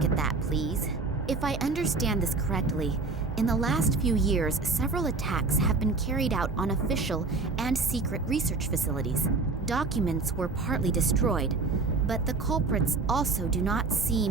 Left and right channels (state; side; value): quieter; left; 3.8 dB